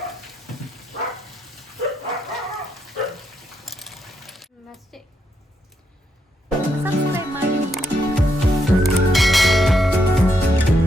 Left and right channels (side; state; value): both; normal; correlation 0.79